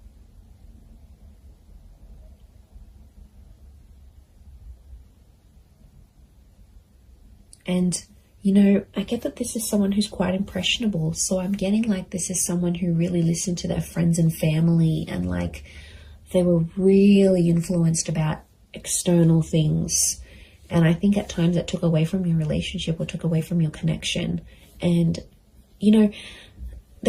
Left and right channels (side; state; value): both; identical; correlation 1.00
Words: And, you know, I get that this is someone who's quite impressionable. So I'm getting like this is someone who really listened to their friends and family, and like they were really influenced about external things. And I think at times it took away from your relationship or took away from your connection. And, you know,